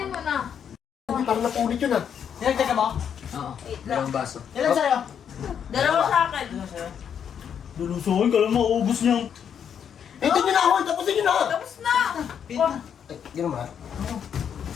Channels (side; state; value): right; quieter; 8.1 dB